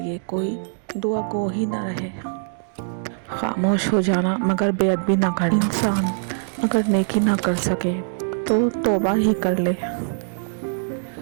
لیے کوئی دعا گو ہی نہ رہے۔ خاموش ہو جانا مگر بے ادبی نہ کرنا۔ انسان اگر نیکی نہ کر سکے تو توبہ ہی کر لے۔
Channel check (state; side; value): silent; left; digital silence